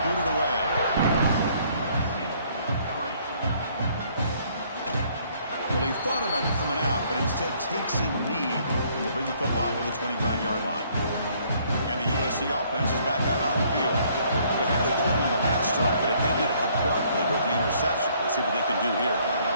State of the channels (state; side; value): inverted; both; correlation -0.63